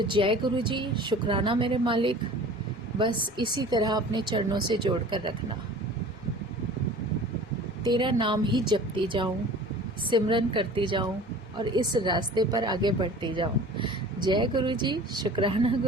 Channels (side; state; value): both; normal; correlation 0.43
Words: जय गुरु जी, शुक्राना मेरे मालिक। बस इसी तरह अपने चरणों से जोड़ कर रखना, तेरा नाम ही जपती जाऊं, सिमरन करती जाऊं, और इस रास्ते पर आगे बढ़ती जाऊं। जय गुरु जी, शुक्राना